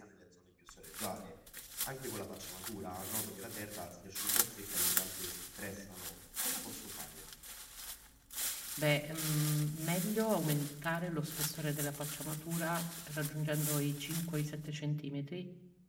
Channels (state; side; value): identical; both; correlation 1.00